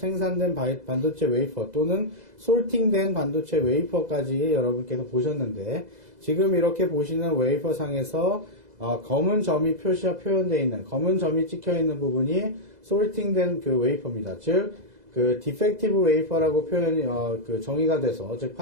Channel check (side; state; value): left; late; 2.0 ms